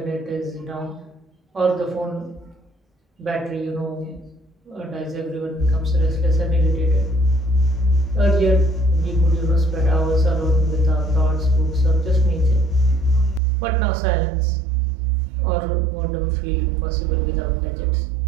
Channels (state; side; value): drops out; left; at 13.4 s